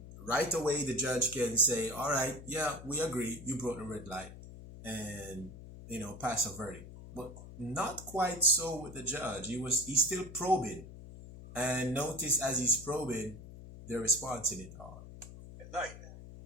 right away the judge can say, all right, yeah, we agree, you broke the red light, and pass a verdict. But not quite so with the judge. He's still probing, and notice as he's probing, they're responding it all. At night.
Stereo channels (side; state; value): left; noise; hum, 14 dB below the sound